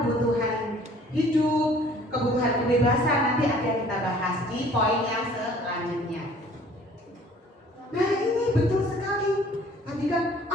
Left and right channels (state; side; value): normal; both; correlation 0.54